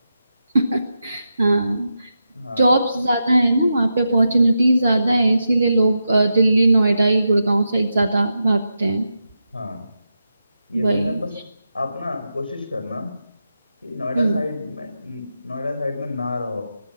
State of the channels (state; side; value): inverted; both; correlation -0.88